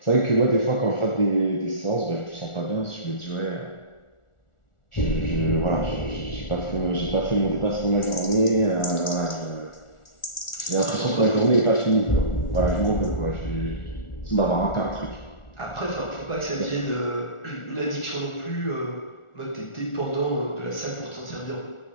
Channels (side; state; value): right; late; 1.4 ms